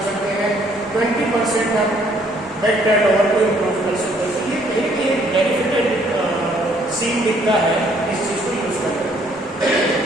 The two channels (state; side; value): normal; both; correlation 0.64